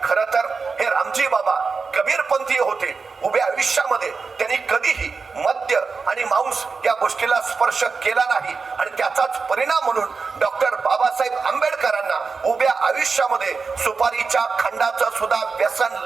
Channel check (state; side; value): quieter; left; 4.7 dB